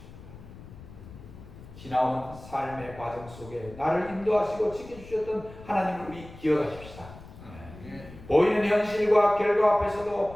지나온 삶의 과정 속에 나를 인도하시고 지켜주셨던 하나님을 우리 기억하십시다. 보이는 현실과 결과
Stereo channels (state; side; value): noise; left; rumble, 17 dB below the sound